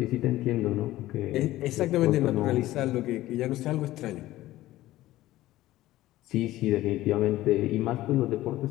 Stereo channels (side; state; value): right; quieter; 15.9 dB